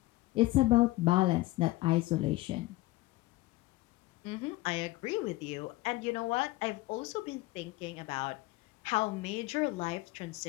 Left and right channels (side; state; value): right; quieter; 19.4 dB